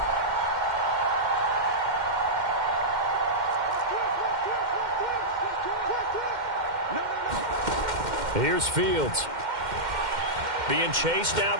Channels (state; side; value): late; left; 2.1 ms